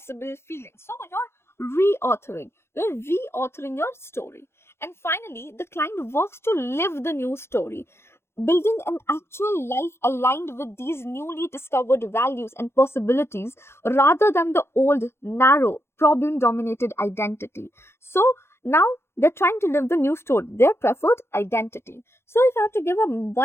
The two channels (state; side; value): late; right; 0.12 ms